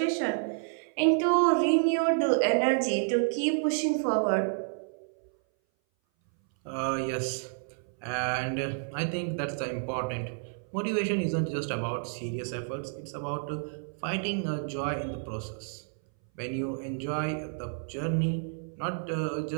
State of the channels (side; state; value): left; silent; 58 dB below the other